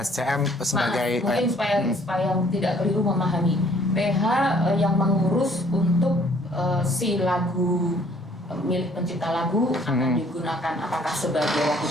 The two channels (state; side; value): normal; both; correlation 0.60